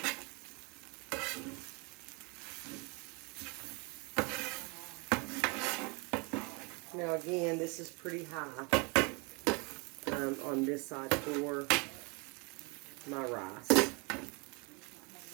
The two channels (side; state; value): left; quieter; 30.9 dB